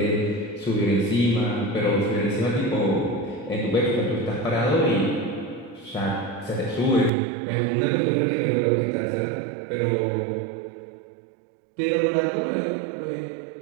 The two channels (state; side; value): drops out; left; at 7.1 s